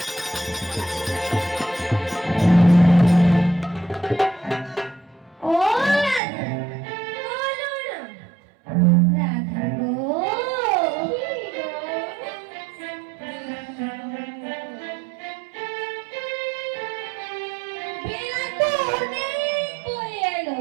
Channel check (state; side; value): drops out; left; at 6.2 s